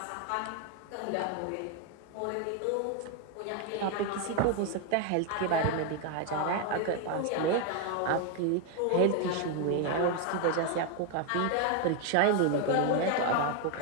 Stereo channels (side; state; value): both; different; correlation 0.01